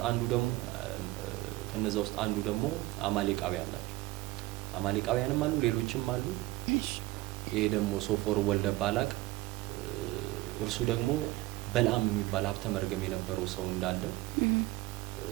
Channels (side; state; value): left; quieter; 19.1 dB